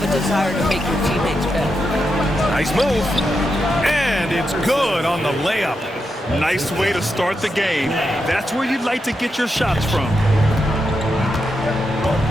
a desire to make your teammates better. Nice move. And it's good on the layup. Nice way to start the game. That's where you'd like to get your shots from.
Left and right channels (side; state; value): both; normal; correlation 0.86